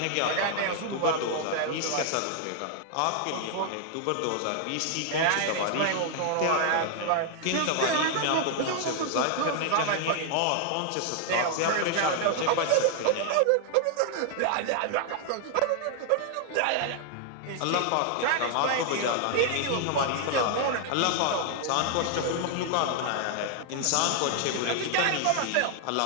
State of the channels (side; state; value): both; different; correlation 0.00